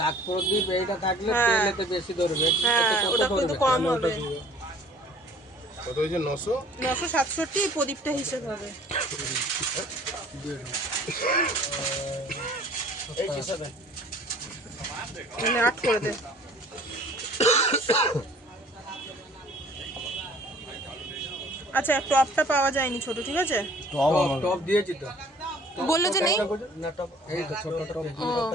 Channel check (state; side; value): normal; both; correlation 0.51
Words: প্রদীপ এইটা থাকলে তেলেতে বেশি ধরবে। হ্যাঁ, ওটা কিন্তু কম হবে। কত হয়েছে? 967 প্রদীপটা হিসেব হবে। এই হিসাবে 8 করে দে। আচ্ছা, টপটা পাওয়া যায়নি ছোট, ঠিক আছে? টপ দিয়েছি তো, বললো যে নেই না টপ এই তো ছোট টপ